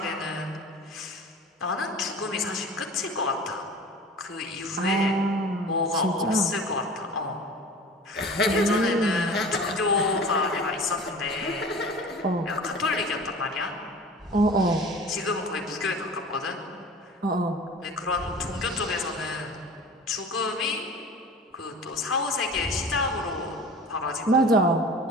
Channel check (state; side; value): normal; both; correlation 0.39